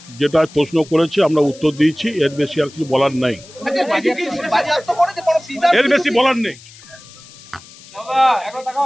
যেটা প্রশ্ন করেছে আমরা উত্তর দিয়েছি এর বেশি আর কিছু বলার নাই এর বেশি বলার নেই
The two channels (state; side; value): noise; left; hiss, 21 dB below the sound